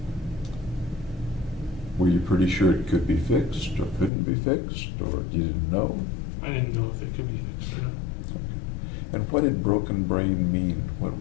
were you pretty sure it could be fixed or couldn't be fixed, or you didn't know? I didn't know if it could be fixed or not. And what did broken brain mean?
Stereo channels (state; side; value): drops out; right; at 4.1 s